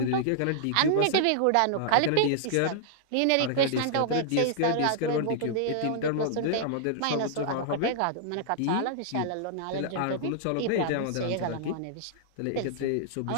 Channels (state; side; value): different; both; correlation -0.01